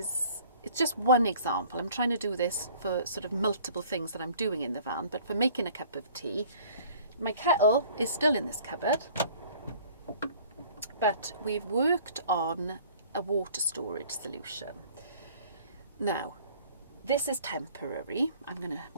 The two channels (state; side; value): inverted; both; correlation -0.52